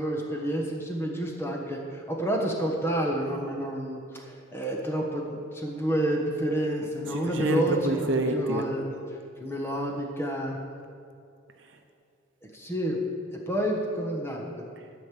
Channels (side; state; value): both; normal; correlation 0.54